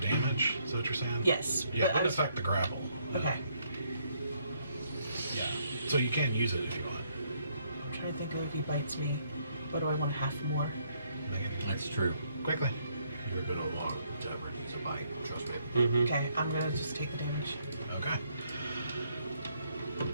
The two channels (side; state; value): both; inverted; correlation -0.71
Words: Is that what you're saying? Yes. Yeah, it but I would was- affect the grapple. Okay. Yeah. So you can use it if you want. I'm trying to think of if he bites me. What do I want? Half more? That's true. Quickly. You're gonna walk to emergency bite, trust me. Okay, I'm gonna just take the damage. Okay.